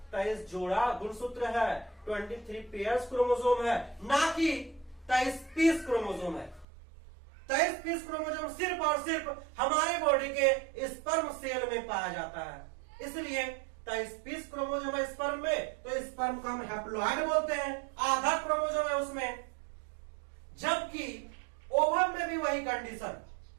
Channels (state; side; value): drops out; left; at 6.7 s